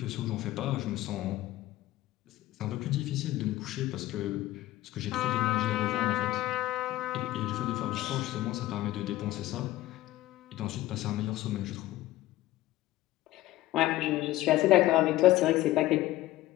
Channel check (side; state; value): right; quieter; 16.0 dB